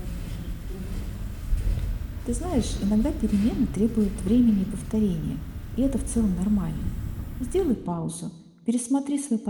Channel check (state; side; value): identical; both; correlation 1.00